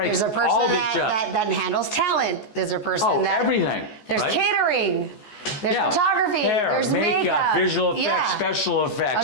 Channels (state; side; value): late; right; 14 ms